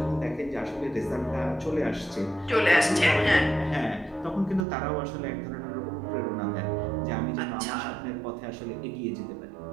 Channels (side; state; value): left; drops out; at 4.7 s